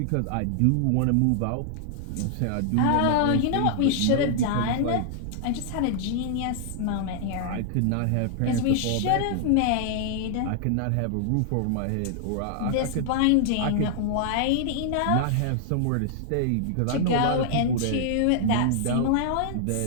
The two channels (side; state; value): both; different; correlation -0.01